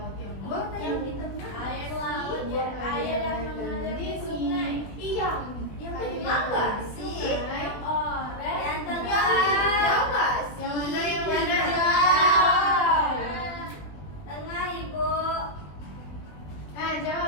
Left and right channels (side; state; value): right; late; 20 ms